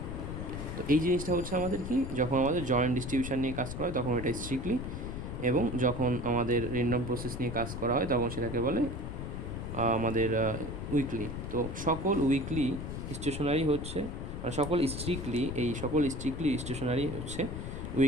তো এই জিনিসটা হচ্ছে আমাদের কি, যখন আমাদের জয়েন্ট ডিস্ট্রিবিউশন নিয়ে কাজ করা হয় তখন এটা স্ট্রিক্টলি, এবং যখন আমাদের র্যান্ডম প্রসেস নিয়ে কাজ করা হয় তখন সেটাকে বলে আমাদের উইকলি। তো সকল উইকলি স্টেশনারি হচ্ছে, মানে সকল স্ট্রিক্টলি স্টেশনারি হচ্ছে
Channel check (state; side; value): noise; left; rumble, 6 dB below the sound